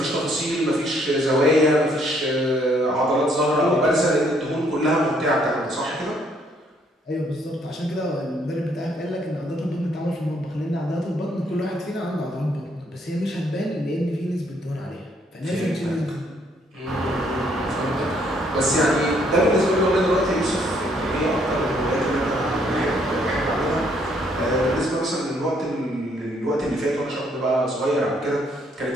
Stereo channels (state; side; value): normal; both; correlation 0.68